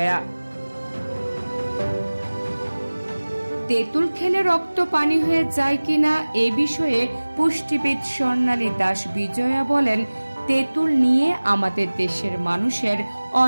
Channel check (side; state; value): both; inverted; correlation -1.00